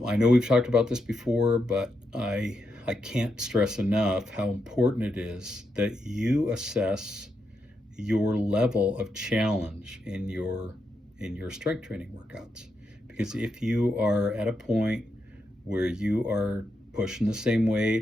I know we've talked about this before, but I can't stress enough how important it is that you assess your level of challenge in your strength training workouts. Because if you are at a point where you are pushing the same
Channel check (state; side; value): normal; both; correlation 0.84